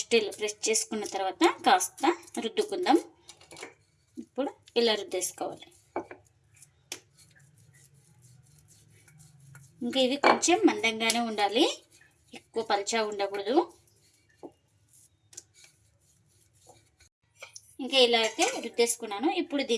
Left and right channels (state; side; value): identical; both; correlation 1.00